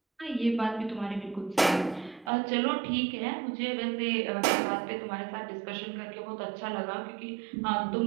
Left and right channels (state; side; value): drops out; left; at 2.3 s